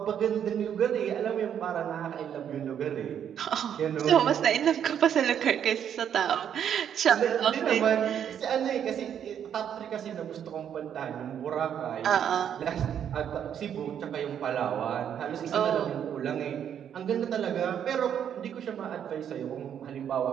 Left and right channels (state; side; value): quieter; left; 9.0 dB